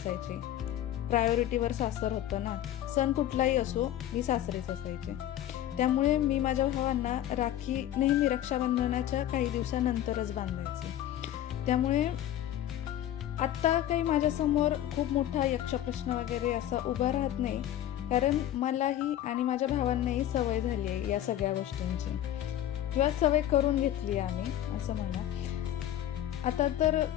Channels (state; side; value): quieter; right; 12.1 dB